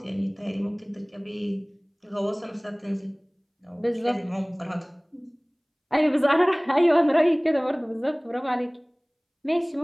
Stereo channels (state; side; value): identical; both; correlation 1.00